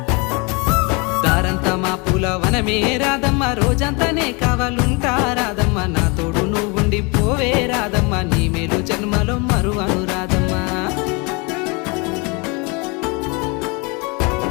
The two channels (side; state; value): right; quieter; 29.7 dB